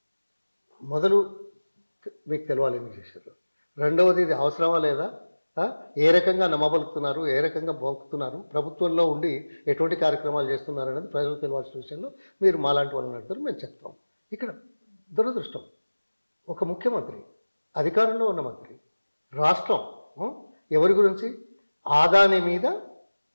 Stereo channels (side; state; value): both; inverted; correlation -1.00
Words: మొదలు మీకు తెలవాలి ఎందుకు చేశారు. రెండవది, ఇది అవసరమా లేదా, ఏ రకంగా నమ్మబలుకుతున్నారు, ఏ రకంగా బొక్కుతున్నారు, ప్రభుత్వంలో ఉండి ఎటువంటి కార్యక్రమాలు చేస్తున్నారు అనేది ప్రజలకు తెలియాల్సిన విషయంలో మీరు మాలాంటి వాళ్ళని అడుగుతారు, మేము చెప్తాం. ఇక్కడ దురదృష్టం, ఒక ముఖ్యమంత్రి, అధికారంలో ఉన్న మంత్రి, రాష్ట్రం ఎవరి గురించి, ఆదాని మీద